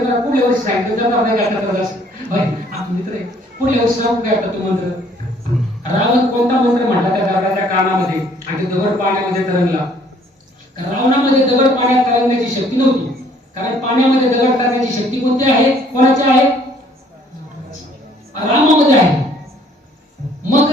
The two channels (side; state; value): both; normal; correlation 0.60